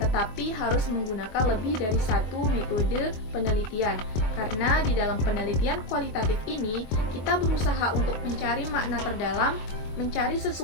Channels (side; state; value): right; late; 23 ms